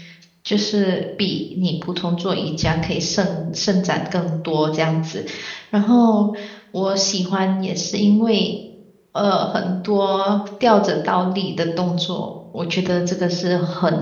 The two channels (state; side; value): identical; both; correlation 1.00